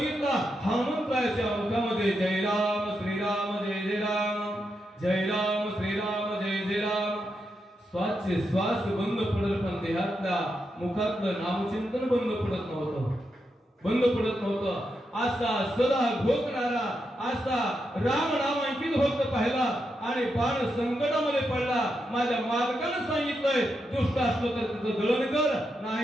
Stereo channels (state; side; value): normal; both; correlation 0.84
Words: हनुमंताच्या मुखामध्ये जय राम श्रीराम जय जय राम, जय राम श्रीराम जय जय राम. श्वासचे श्वास बंद पडत पण देहातल्या मुखातलं नामचिंतन बंद पडत नव्हतं, बंद पडत नव्हतं. असा सदा घोकणारा असा राम नामांकित भक्त पाहिला आणि बाण संकटामध्ये पडला. माझ्या मालकानं सांगितलंय दुष्ट असलो तर त्याचं दळण कर,